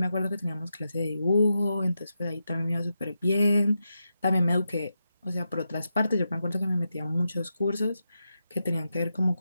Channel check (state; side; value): inverted; both; correlation -0.87